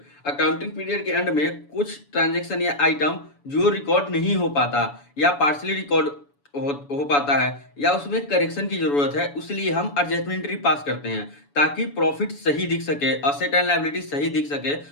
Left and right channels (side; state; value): right; late; 7.0 ms